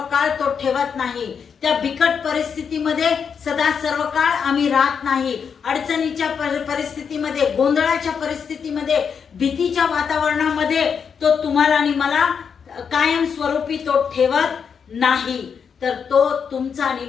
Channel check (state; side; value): quieter; right; 6.7 dB